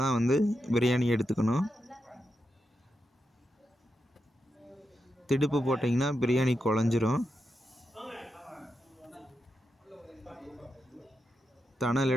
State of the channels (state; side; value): normal; both; correlation 0.86